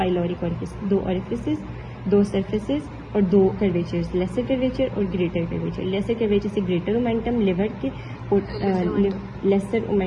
ओरिफिस। दो ओरिफिसेस, दो सरफेसेस और दो कर्वेचर्स, लेसर कर्वेचर और ग्रेटर कर्वेचर। लेसर कर्वेचर से ग्रेटर ओमेंटम लिवर के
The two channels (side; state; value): both; identical; correlation 1.00